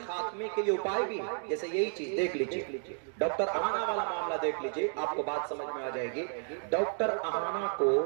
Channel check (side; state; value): left; silent; 56 dB below the other